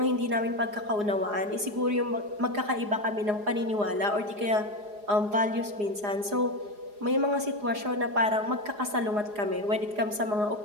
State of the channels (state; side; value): late; left; 4.8 ms